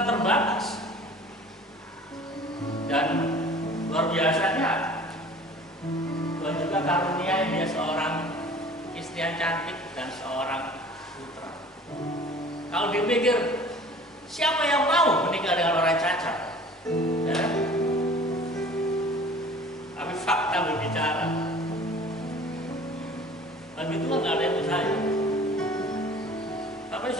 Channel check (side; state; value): both; normal; correlation 0.47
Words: terbatas. Dan luar biasanya, Tuhan juga karunia dia seorang istri yang cantik dan seorang putra. Kalau dipikir, siapa yang mau menikah dengan orang cacat? Ya? Tapi fakta berbicara. Bagi Tuhan nggak ada yang mustahil. Tapi